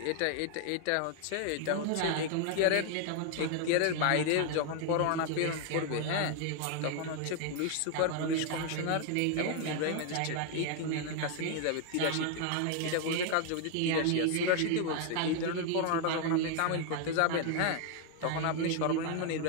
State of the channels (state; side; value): different; both; correlation 0.00